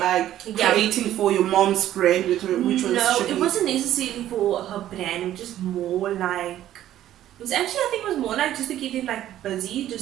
creating for your mom's brand, which was no, Chernice. it wasn't necessarily for her brand. Just more like it was actually, I think it was more like just to keep them like busy,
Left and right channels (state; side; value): quieter; left; 12.5 dB